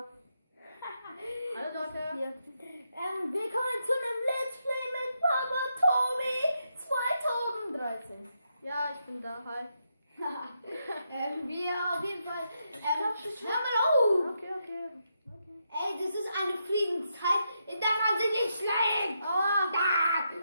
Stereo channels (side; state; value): both; inverted; correlation -0.82